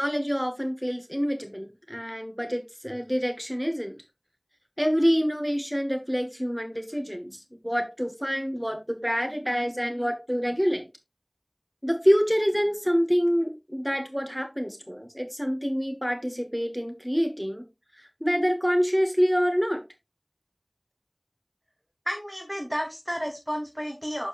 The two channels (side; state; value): both; identical; correlation 1.00